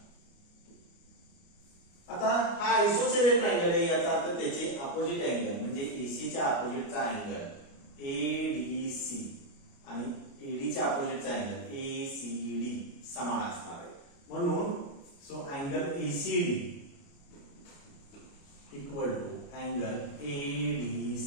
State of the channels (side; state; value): right; late; 29 ms